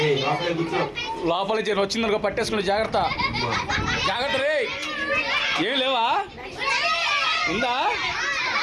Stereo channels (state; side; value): identical; both; correlation 1.00